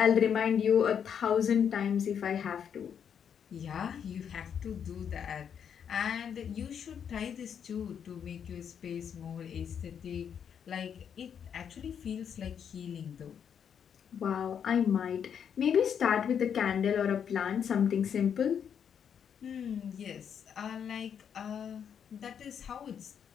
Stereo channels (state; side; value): quieter; right; 7.9 dB